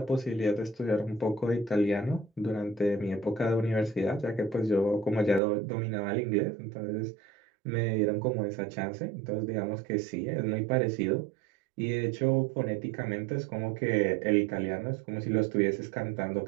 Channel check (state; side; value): drops out; left; at 5.4 s